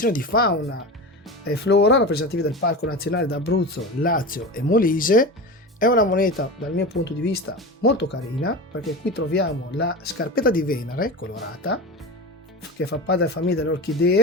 di fauna e flora rappresentative del Parco Nazionale d'Abruzzo, Lazio e Molise, È una moneta dal mio punto di vista molto carina, perché qui troviamo la scarpetta di Venere colorata, che fa parte della famiglia delle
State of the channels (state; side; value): normal; both; correlation 0.26